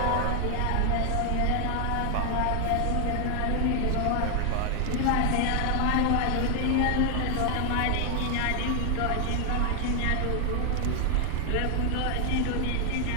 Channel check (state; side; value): different; both; correlation 0.00